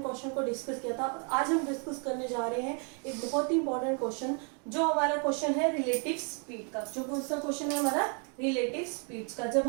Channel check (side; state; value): left; quieter; 39.2 dB